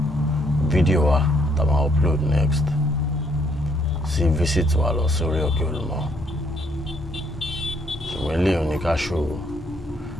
fídíò wa tá a máa upload next sí visit wa lọ sórí òkè Olumo ṣùgbọ́n eléyìí ní ká ṣòro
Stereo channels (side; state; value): both; normal; correlation 0.69